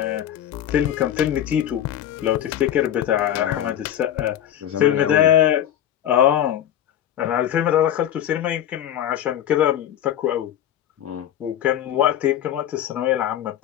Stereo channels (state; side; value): quieter; right; 11.0 dB